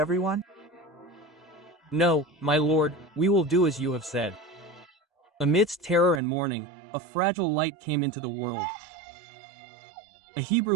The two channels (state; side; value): drops out; left; at 6.2 s